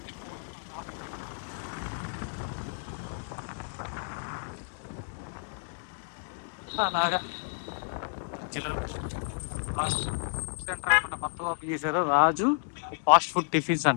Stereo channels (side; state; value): right; silent; digital silence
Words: అలాగా మొత్తం ఓపెన్ చేశారు. రాజు ఫాస్ట్ ఫుడ్ టిఫిన్స్